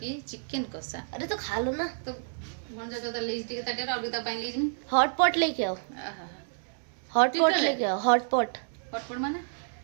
की चिकन कसा अरे तो खा लो ना तो मन जा तो लीज टिके ताटे और बिता पाइन लीज में हॉट पॉट लेके आओ आहा हॉट पॉट लेके आओ हॉट पॉट माने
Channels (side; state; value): left; silent; digital silence